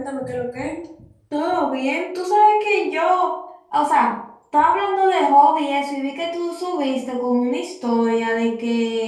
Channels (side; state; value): both; identical; correlation 1.00